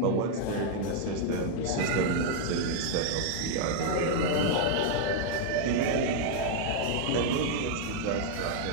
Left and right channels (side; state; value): both; different; correlation 0.00